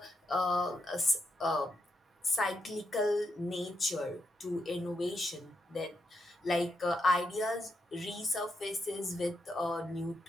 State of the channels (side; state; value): both; normal; correlation 0.81